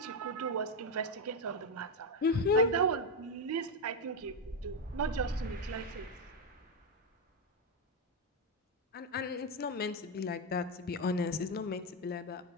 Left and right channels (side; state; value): both; normal; correlation 0.06